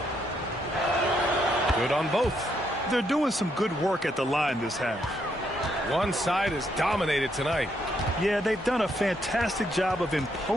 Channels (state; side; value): normal; both; correlation 0.75